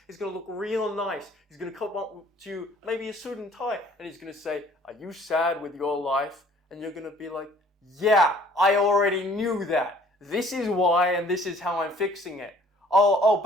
He's going to look real nice. He's going to come up to you, maybe a suit and tie, and he's going to say, "Are you sad with your life?" And you're going to be like, "Yeah, I already knew that. This is why, and this is how I'm fixing it." Oh,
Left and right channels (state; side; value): normal; both; correlation 0.56